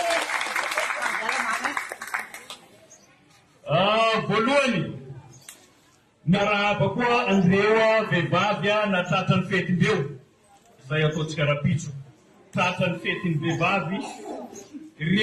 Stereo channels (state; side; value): identical; both; correlation 1.00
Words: Voalohany miarahaba koa andreo vehivavy na tratran'ny fetindreo. Zay ataontsika rapitso. Tratran'ny fetin'ny vehivavy.